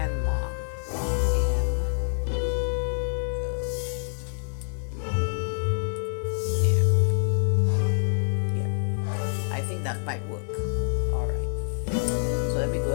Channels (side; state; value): right; silent; digital silence